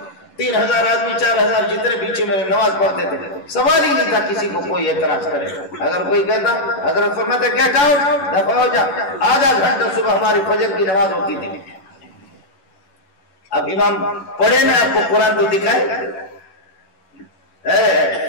3000 آدمی 4000 جتنے پیچھے میرے نماز پڑھتے تھے، سوال ہی نہیں تھا کسی کو کوئی اعتراض کرے۔ اگر کوئی کہتا، حضرت فرماتے گیٹ آؤٹ، دفع ہو جا۔ آدھا گھنٹہ صبح ہماری فجر کی نماز ہوتی تھی۔ اب امام پڑھے نا آپ کو قرآن تو دکھائے۔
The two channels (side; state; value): right; late; 11 ms